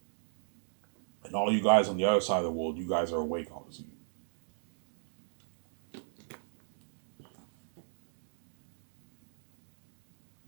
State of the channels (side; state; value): left; silent; digital silence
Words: and all you guys on the other side of the world, you guys are awake, obviously.